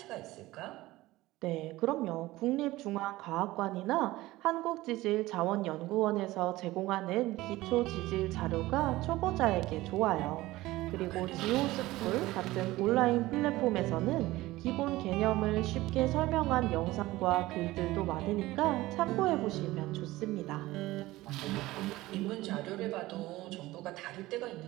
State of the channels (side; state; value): left; quieter; 18.1 dB